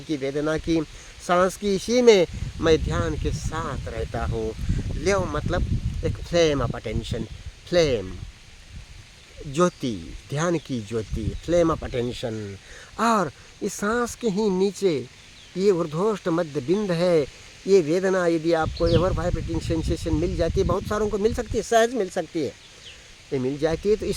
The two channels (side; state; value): both; identical; correlation 1.00